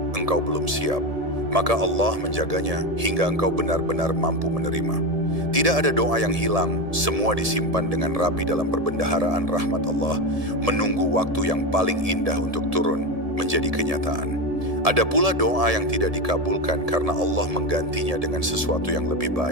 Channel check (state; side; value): late; left; 1.7 ms